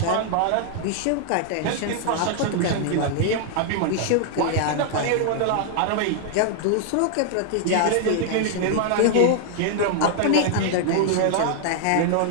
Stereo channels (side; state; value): both; different; correlation 0.00